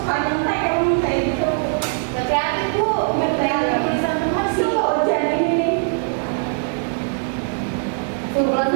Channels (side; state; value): left; silent; digital silence